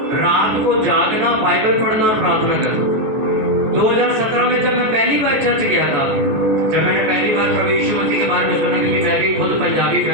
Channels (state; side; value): late; left; 14 ms